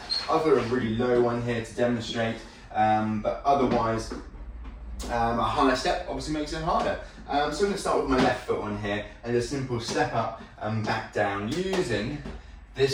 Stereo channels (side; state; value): both; identical; correlation 1.00